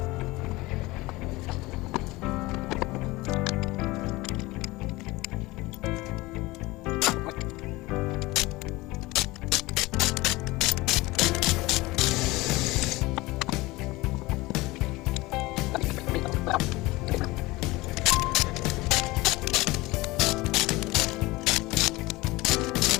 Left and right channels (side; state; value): right; quieter; 20.9 dB